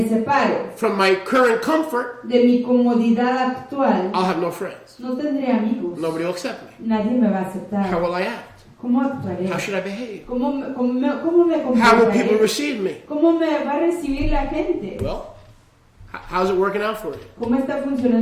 separo from my current comfort, de mi comodidad actual, I'll have no friends. no tendré amigos. Nobody will accept me. Nadie me va a aceptar. How will I act? ¿Cómo actuaré? How should I behave? ¿Cómo me How will people comportaré? receive me? ¿Cómo me va a recibir la gente? Well, How's it working out for you? ¿Cómo está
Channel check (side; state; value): both; identical; correlation 1.00